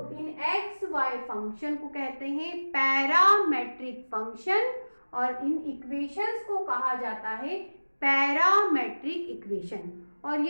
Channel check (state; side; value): inverted; both; correlation -1.00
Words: इन एक्स वाई फंक्शन को कहते हैं पैरामेट्रिक फंक्शन और इन इक्वेशंस को कहा जाता है पैरामेट्रिक इक्वेशन। और